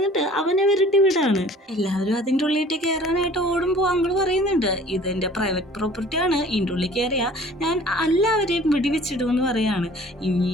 അവനെ വിരട്ടി വിടാണ്. എല്ലാവരും അതിൻ്റെ ഉള്ളിലേക്ക് കയറാനായിട്ട് ഓടുമ്പോൾ അങ്കിൾ പറയുന്നുണ്ട്, ഇതെൻ്റെ പ്രൈവറ്റ് പ്രോപ്പർട്ടിയാണ്, ഇതിൻ്റെ ഉള്ളിൽ കയറിയാൽ ഞാൻ എല്ലാവരെയും വെടിവെച്ചിടുമെന്ന് പറയാണ്. ഇനി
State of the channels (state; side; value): normal; both; correlation 0.49